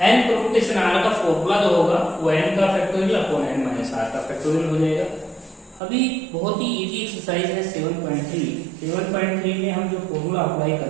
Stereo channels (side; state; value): left; drops out; at 5.8 s